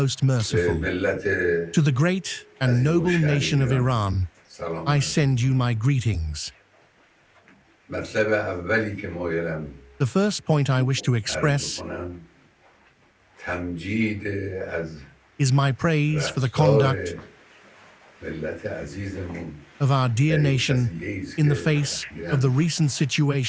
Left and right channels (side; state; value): both; identical; correlation 1.00